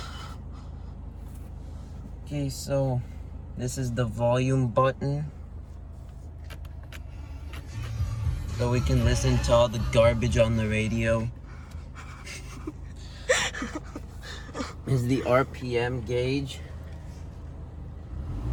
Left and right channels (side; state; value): both; identical; correlation 1.00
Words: Okay, so this is the volume button. So we can listen to all the garbage on the radio. Is the RPM gauge.